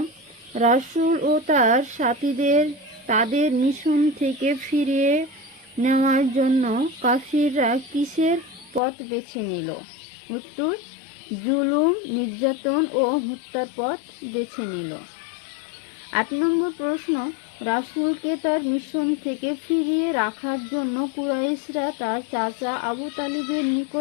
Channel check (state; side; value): drops out; right; at 8.8 s